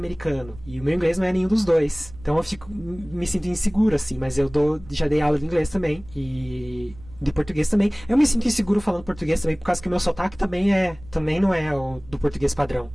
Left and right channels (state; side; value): noise; right; rumble, 19 dB below the sound